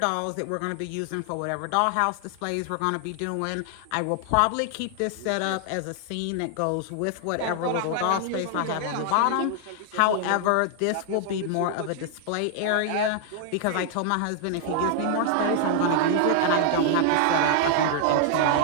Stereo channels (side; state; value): both; different; correlation 0.00